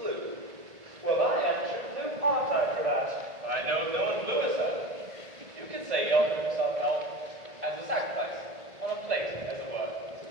Well, I am true blue, aren't I, Cravat? I know no one bluer, sir. You could say he offered himself help as a sacrifice, on a plate, as it were.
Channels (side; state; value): left; late; 1.7 ms